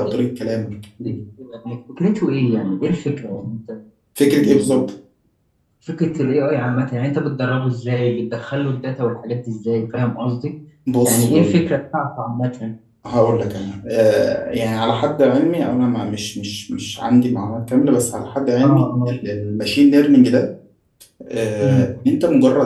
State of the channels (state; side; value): identical; both; correlation 1.00